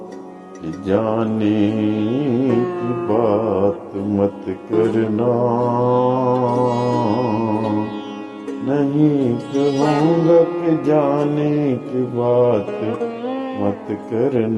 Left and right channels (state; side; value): identical; both; correlation 1.00